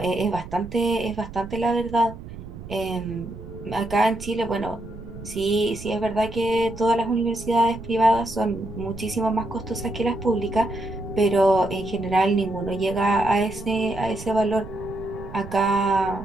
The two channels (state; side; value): noise; right; rumble, 13 dB below the sound